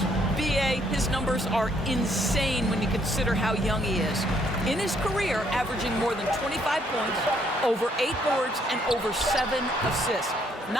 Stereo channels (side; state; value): both; normal; correlation 0.69